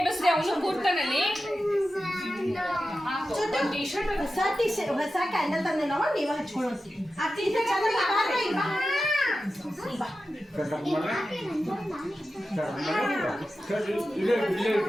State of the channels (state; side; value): normal; both; correlation 0.92